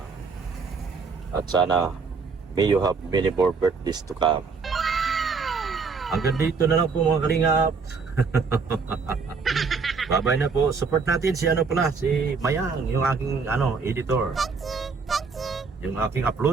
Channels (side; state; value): left; quieter; 5.0 dB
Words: At sana may you have many more birthdays to come. Hanggang dito na lang po mga kalingap. Bye-bye na po. Support natin si si Mayang, yung aking editor. Yung aking